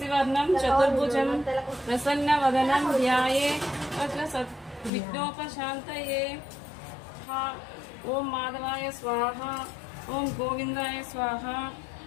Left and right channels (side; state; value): right; drops out; at 4.9 s